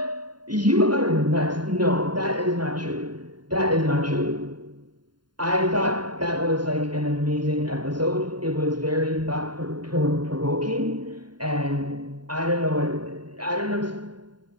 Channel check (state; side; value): late; left; 0.71 ms